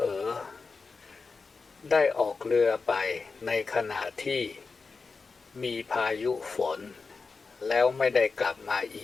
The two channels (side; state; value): right; quieter; 4.5 dB